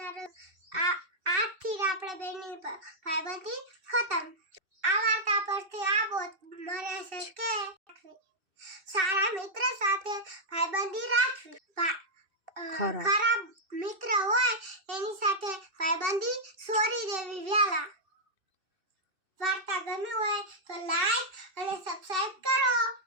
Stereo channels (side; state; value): left; late; 2.6 ms